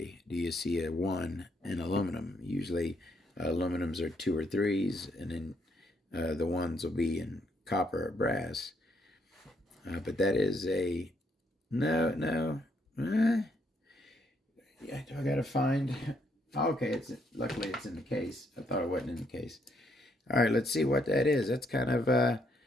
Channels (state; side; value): normal; both; correlation 0.72